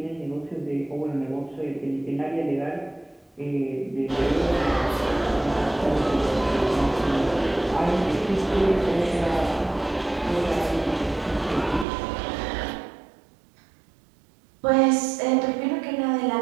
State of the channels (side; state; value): left; drops out; at 11.9 s